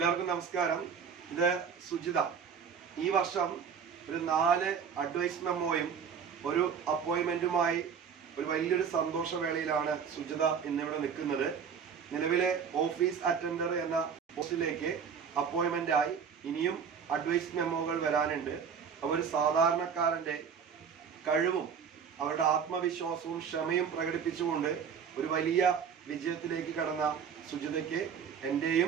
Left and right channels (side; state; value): left; quieter; 6.9 dB